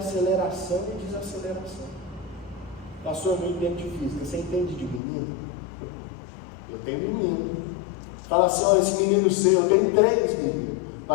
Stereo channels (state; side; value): drops out; right; at 5.0 s